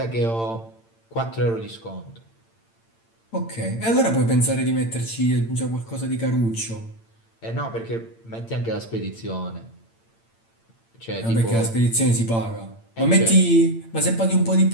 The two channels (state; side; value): late; right; 8.8 ms